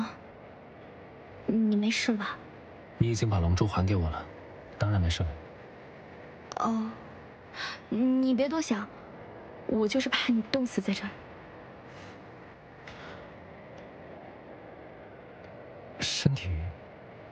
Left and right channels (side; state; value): both; identical; correlation 1.00